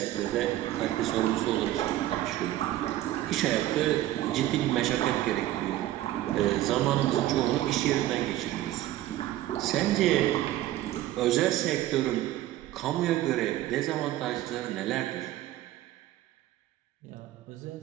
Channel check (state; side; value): quieter; left; 14.5 dB